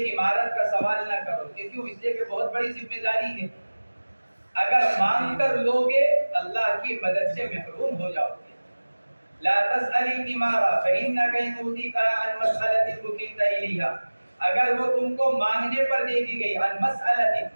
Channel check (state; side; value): inverted; both; correlation -1.00